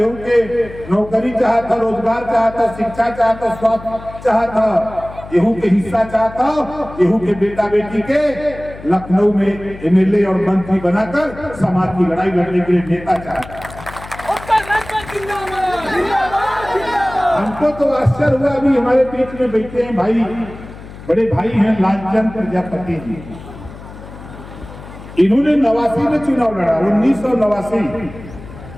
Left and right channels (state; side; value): noise; left; hum, 15 dB below the sound